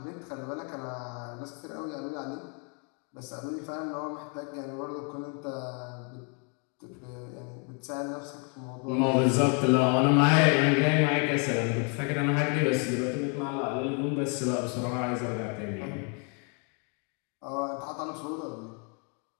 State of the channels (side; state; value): right; quieter; 36.4 dB